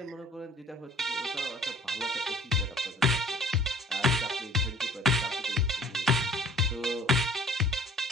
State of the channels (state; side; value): normal; both; correlation 0.51